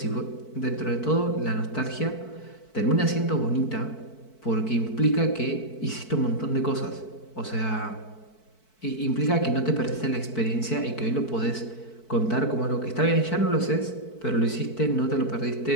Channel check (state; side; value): late; right; 4.6 ms